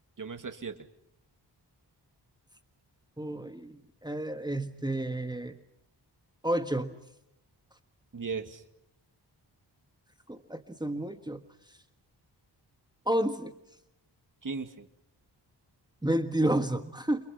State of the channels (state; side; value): normal; both; correlation 0.77